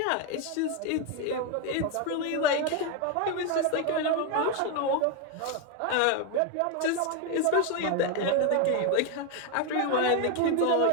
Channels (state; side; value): different; both; correlation 0.01